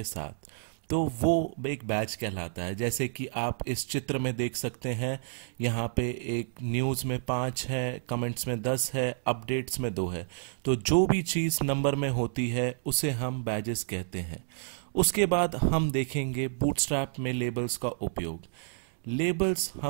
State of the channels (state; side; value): silent; left; digital silence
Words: साथ, तो वो एक बैच कहलाता है। जैसे कि आप इस चित्र में देख सकते हैं, यहाँ पे एक न्यूज़ में 5 है, कमेंट्स में 10 है, अपडेट्स में 2 है। तो जो भी चीज़ नंबर में होती है उसे हम बैजेस कहते हैं। उसके बाद हम देखेंगे बूटस्ट्रैप में लेबल्स का उपयोग। लेबल्स